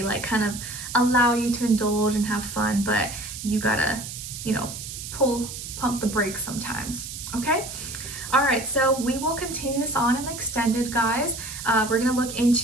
like kind of allow you to indulge and have fun, but you gotta, you know, pump the brakes sometimes, okay? All right, so we will continue this on and extended, guys. We're gonna look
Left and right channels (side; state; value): right; noise; hiss, 9 dB below the sound